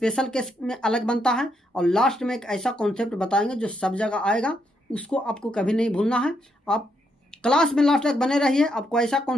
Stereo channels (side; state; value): both; normal; correlation 0.77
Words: केस में अलग बनता है, और लास्ट में एक ऐसा कॉन्सेप्ट बताएंगे जो सब जगह आएगा, उसको आपको कभी नहीं भूलना है। आप क्लास में लास्ट तक बने रहिए। आपको ऐसा